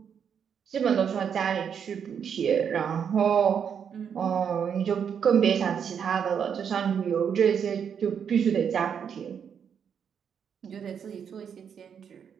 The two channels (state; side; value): quieter; left; 7.6 dB